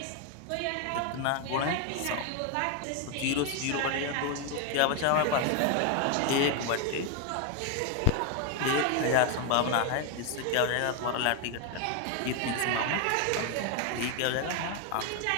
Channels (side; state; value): both; different; correlation 0.01